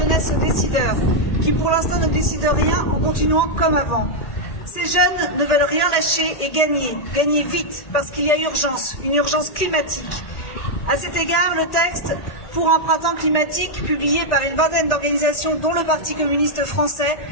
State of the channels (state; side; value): late; right; 1.9 ms